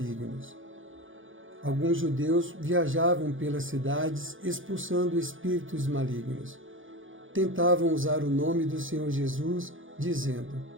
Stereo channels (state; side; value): late; left; 0.58 ms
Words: Alguns judeus viajavam pelas cidades expulsando espíritos malignos. Tentavam usar o nome do Senhor Jesus, dizendo: